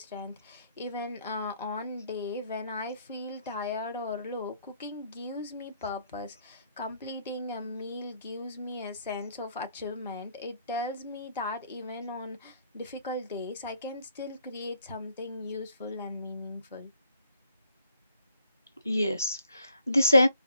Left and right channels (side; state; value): both; inverted; correlation -0.68